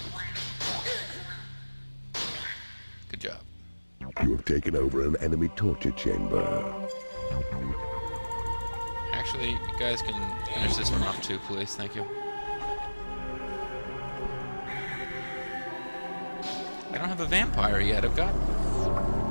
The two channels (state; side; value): inverted; both; correlation -1.00